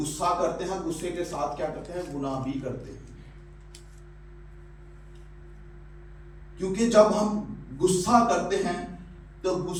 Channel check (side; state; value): both; identical; correlation 1.00